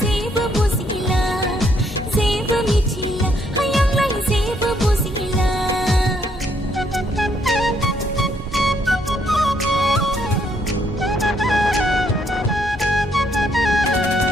जेबो बुजिला जेबो मिथिला हायांलाय जेबो बुजिला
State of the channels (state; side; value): normal; both; correlation 0.71